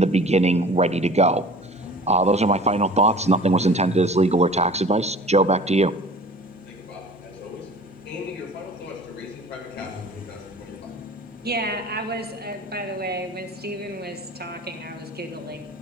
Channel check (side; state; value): both; normal; correlation 0.44